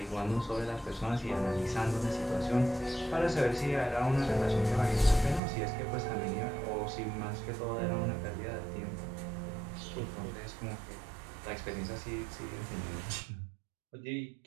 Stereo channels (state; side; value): drops out; left; at 5.4 s